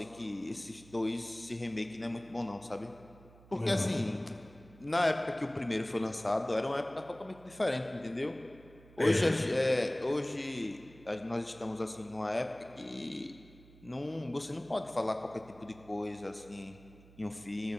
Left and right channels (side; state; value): right; noise; hum, 22 dB below the sound